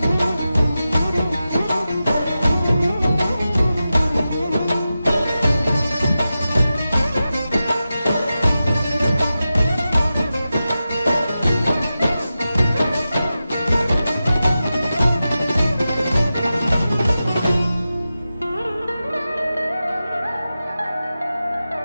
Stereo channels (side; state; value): both; inverted; correlation -0.92